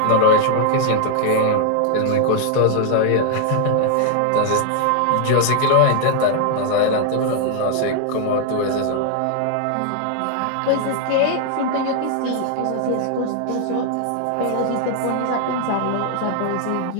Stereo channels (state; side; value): different; both; correlation 0.00